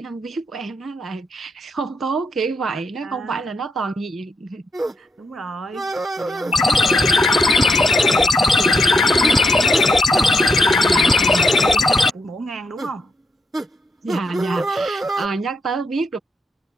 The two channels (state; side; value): normal; both; correlation 0.81